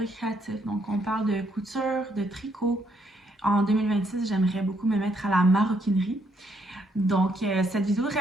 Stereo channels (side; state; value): both; normal; correlation 0.73